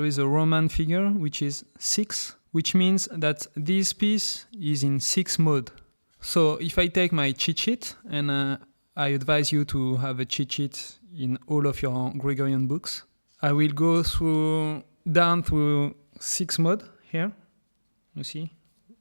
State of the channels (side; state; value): both; inverted; correlation -1.00